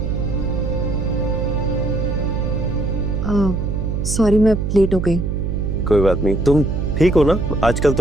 सॉरी मैं लेट हो गई। कोई बात नहीं, तुम ठीक हो ना? आजकल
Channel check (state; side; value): noise; right; hum, 1 dB below the sound